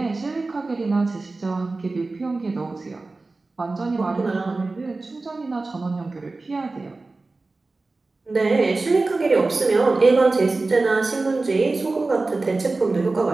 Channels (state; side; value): quieter; left; 3.4 dB